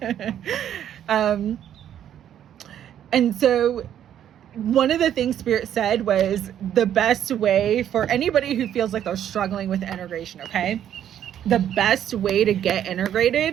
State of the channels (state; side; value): quieter; left; 10.3 dB